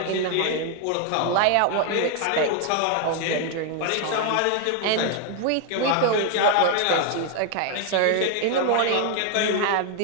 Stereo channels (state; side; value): different; both; correlation 0.00